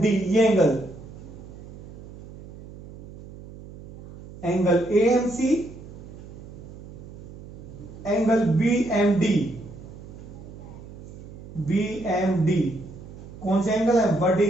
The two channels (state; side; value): noise; right; hum, 15 dB below the sound